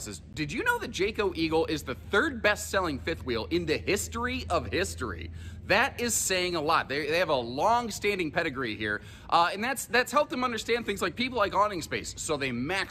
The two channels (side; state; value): both; identical; correlation 1.00